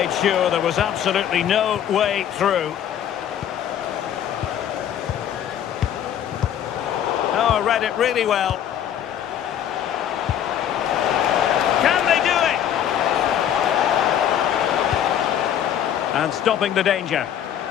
sure there was absolutely no way through. Oh, read it really well. Can they do it? And stopping the danger.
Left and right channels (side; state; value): right; quieter; 10.0 dB